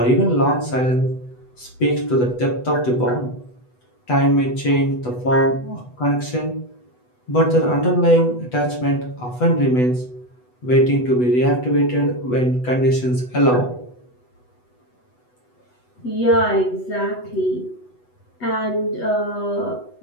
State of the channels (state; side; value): late; right; 8.1 ms